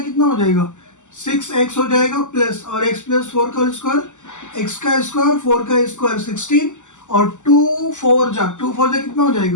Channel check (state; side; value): late; right; 0.85 ms